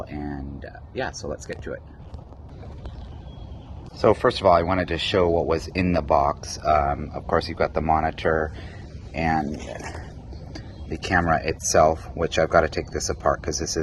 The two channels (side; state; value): both; identical; correlation 1.00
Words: and yeah, so let's get to it. So first of all, I wanted to show what was in the box. Of course, you've got the monitor and the camera itself, which I've got to take this apart because this